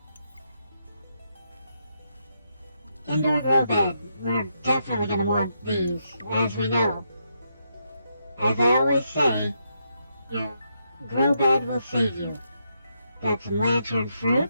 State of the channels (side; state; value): both; inverted; correlation -0.80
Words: Indoor grow bed. We're definitely going to want these, as we know. As I always say, your grow bed will save you. Got some lantern